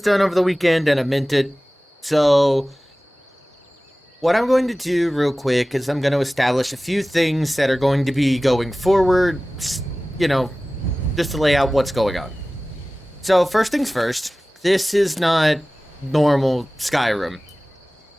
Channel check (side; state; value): both; normal; correlation 0.97